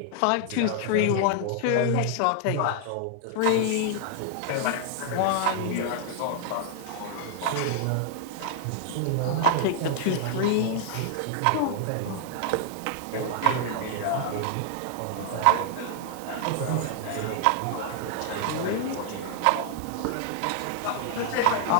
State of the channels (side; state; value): both; different; correlation 0.00